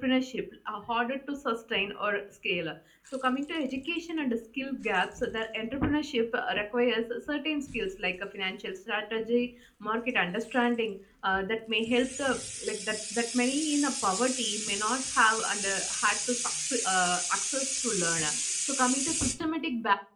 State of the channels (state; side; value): identical; both; correlation 1.00